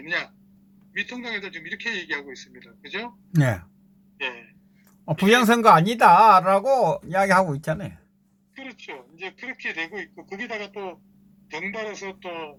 미통당 애들 지금 이렇게 얘기하고 있습니다. 그죠? 네. 예. 부정선거 아니다라고 이야기하고 있잖아요. 그렇죠. 이제 그렇게 되고 있고 거기다가 또 덩달아서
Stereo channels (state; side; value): identical; both; correlation 1.00